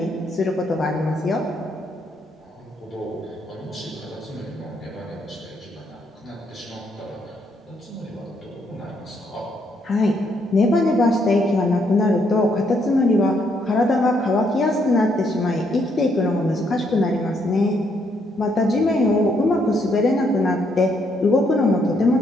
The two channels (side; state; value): both; normal; correlation 0.73